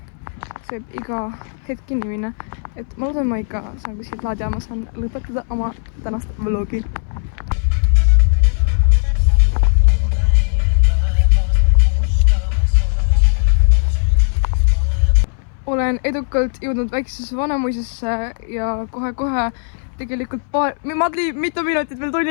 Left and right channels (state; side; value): silent; right; 64 dB below the other